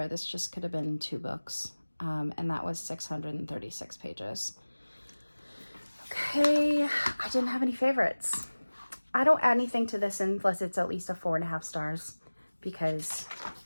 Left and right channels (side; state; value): both; inverted; correlation -1.00